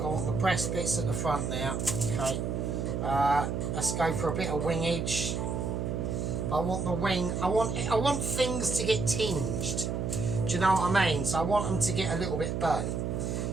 the breast bits at the front now. Okay. Let's go for a bit of wingage. I want the wing. I want things to get tinged. Do you know what I mean? So I want them to get a little bit burnt.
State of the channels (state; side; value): noise; right; hum, 1 dB below the sound